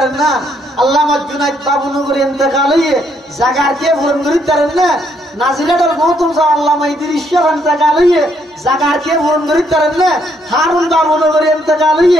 না। আল্লামা জুনাইদ বাবুনগরী ইন্তেকাল হইয়ে জায়গার কে পূরণ করিতে পারেন না। নাজিরাটার মহতম সাহ আল্লামা ইদ্রিস শাহ ইন্তেকাল হইয়ে জায়গার কে পূরণ করিতে পারেন না। হারুন বাবুনগরী ইন্তেকাল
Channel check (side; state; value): both; normal; correlation 0.72